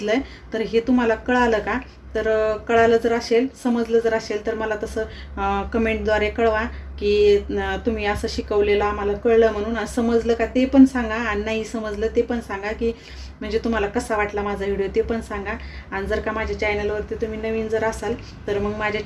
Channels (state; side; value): identical; both; correlation 1.00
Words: आहे तर हे तुम्हाला कळालं का, तर कळालं जर असेल, समजलं जर असेल तर मला तसं कमेंटद्वारे कळवा की तुम्ही असं शिकवलेलं आम्हाला कळलं म्हणून. समजलं का ते पण सांगा, आणि नाही समजलं ते पण सांगा, की म्हणजे तुम्हाला कसा वाटला माझा व्हिडिओ ते पण सांगा. आणि जर का माझ्या चॅनलवरती तुम्ही नवीन जर असाल तर मग माझ्या